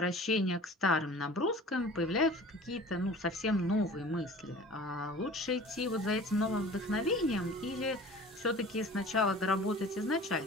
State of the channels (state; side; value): normal; both; correlation 0.42